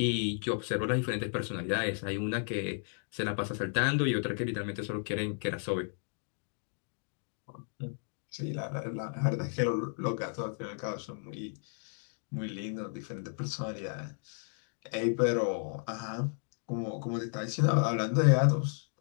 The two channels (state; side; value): silent; right; 55 dB below the other